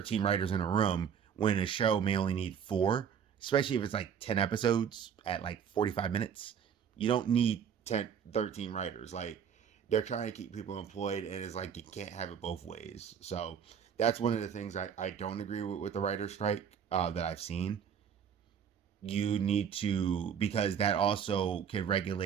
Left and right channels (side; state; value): left; quieter; 7.9 dB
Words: writers in a room when a show may only need 4, especially if it's like 10 episodes at like 45 minutes. You don't need 13 writers. Like, they're trying to keep people employed, and it's like you can't have it both ways. So that's one of the things I don't agree with the writer's strike that I've seen. You need to, because that also can